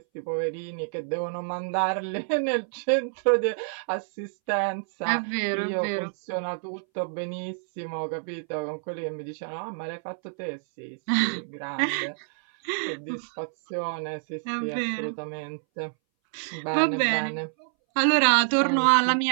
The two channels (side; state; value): left; silent; 60 dB below the other